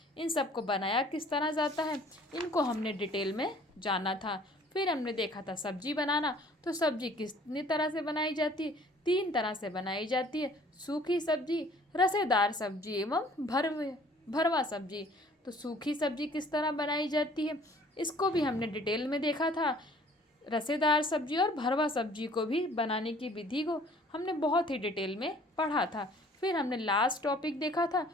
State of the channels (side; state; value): both; normal; correlation 0.54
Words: इन सबको बनाया किस तरह जाता है, इनको हमने डिटेल में जाना था। फिर हमने देखा था सब्जी बनाना। तो सब्जी कितनी तरह से बनाई जाती है, 3 तरह से बनाई जाती है, सूखी सब्जी, रसेदार सब्जी एवं भरवा सब्जी। तो सूखी सब्जी किस तरह बनाई जाती है, इसको भी हमने डिटेल में देखा था। रसेदार सब्जी और भरवा सब्जी को भी बनाने की विधि को हमने बहुत ही डिटेल में पढ़ा था। फिर हमने लास्ट टॉपिक देखा था